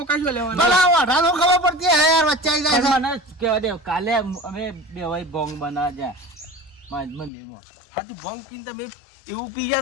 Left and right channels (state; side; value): drops out; right; at 7.3 s